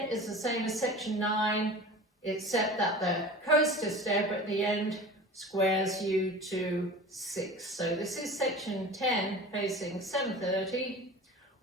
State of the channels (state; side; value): normal; both; correlation 0.37